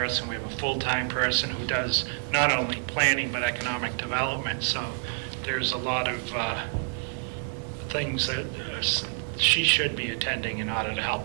We have a full-time person who does not only planning but economic development. So there's a lot of things that she should be attending in order to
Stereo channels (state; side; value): silent; left; 57 dB below the other